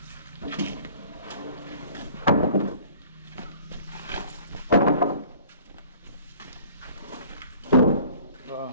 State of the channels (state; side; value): inverted; both; correlation -0.50